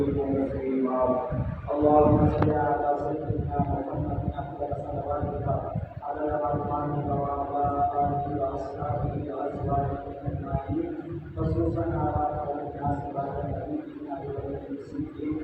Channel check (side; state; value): both; identical; correlation 1.00